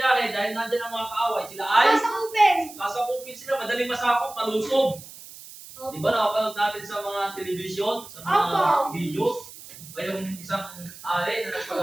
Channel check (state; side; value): noise; right; hiss, 16 dB below the sound